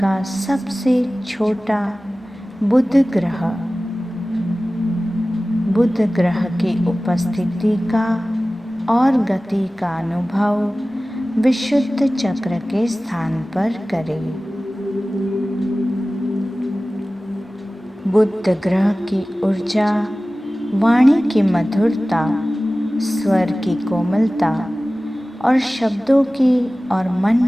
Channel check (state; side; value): normal; both; correlation 0.97